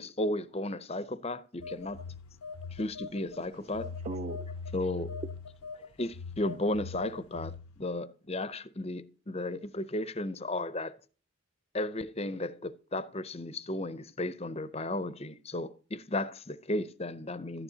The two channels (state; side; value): normal; both; correlation 0.38